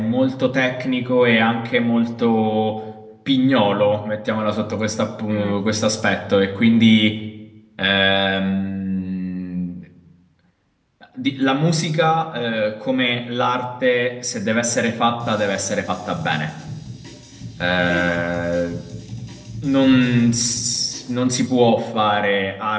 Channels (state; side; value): identical; both; correlation 1.00